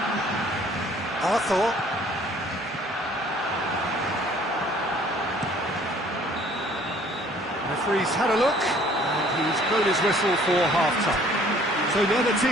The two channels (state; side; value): normal; both; correlation 0.56